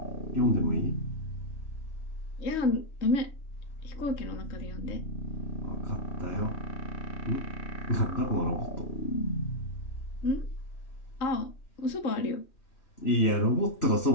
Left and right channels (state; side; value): late; right; 3.2 ms